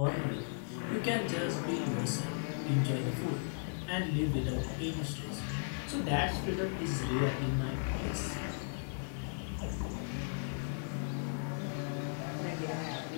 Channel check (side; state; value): right; silent; digital silence